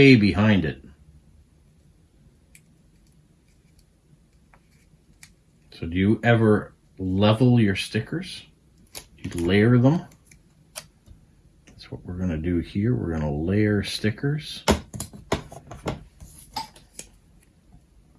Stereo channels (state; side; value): identical; both; correlation 1.00